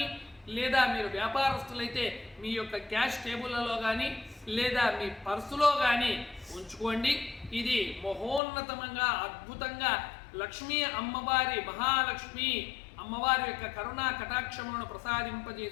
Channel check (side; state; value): right; drops out; at 8.4 s